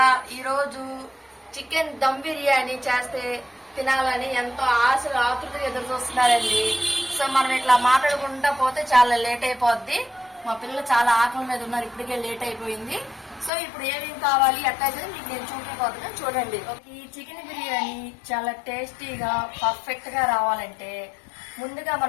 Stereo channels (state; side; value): drops out; right; at 13.5 s